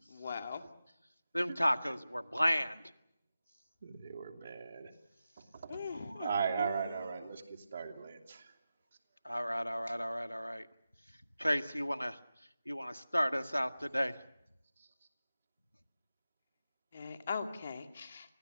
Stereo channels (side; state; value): both; inverted; correlation -0.93